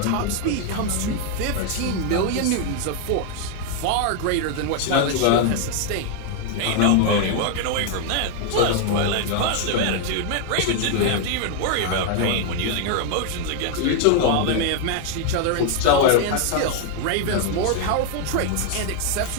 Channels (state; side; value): different; both; correlation 0.00